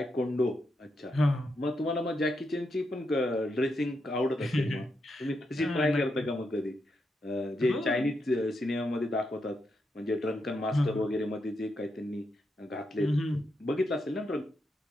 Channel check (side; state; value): both; normal; correlation 0.83